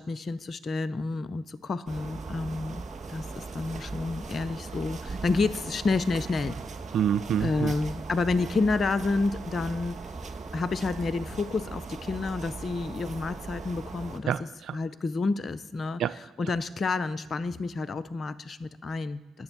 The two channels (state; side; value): normal; both; correlation 0.84